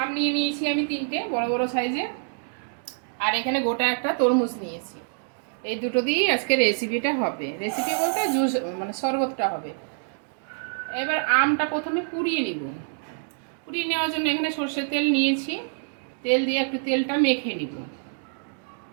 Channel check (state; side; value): silent; left; digital silence